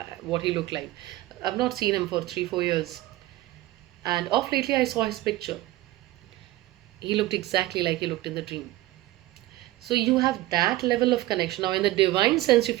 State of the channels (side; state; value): left; quieter; 17.1 dB